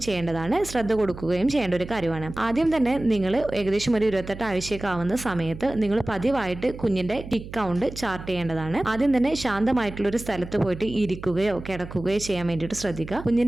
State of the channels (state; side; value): noise; right; hum, 13 dB below the sound